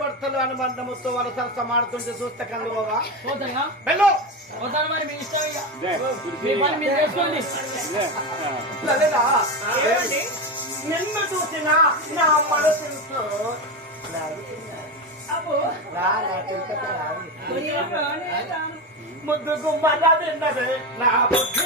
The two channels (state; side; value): normal; both; correlation 0.17